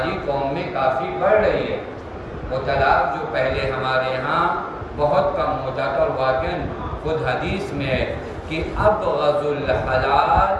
قوم میں کافی بڑھ رہی ہے. وہ طلاق جو پہلے ہمارے یہاں بہت کم ہوتا تھا، اور واقعاً خود حدیث میں ہے کہ ابغض الحلال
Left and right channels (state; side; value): identical; both; correlation 1.00